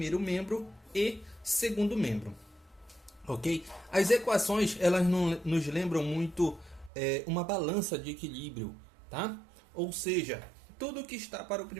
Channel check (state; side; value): drops out; left; at 6.9 s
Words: membro e segundo membro, ok? As equações, elas nos lembram muito uma balança de equilíbrio, tá? Ou seja, tudo que está para o